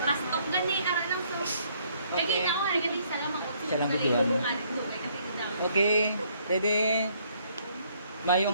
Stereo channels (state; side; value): inverted; both; correlation -0.66